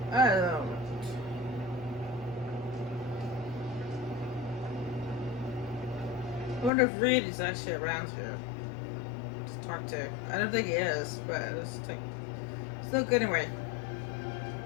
I don't know. I wonder if Reed is actually around here to talk to. I don't think he is, but it's like, still good anyway.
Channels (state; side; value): drops out; right; at 6.7 s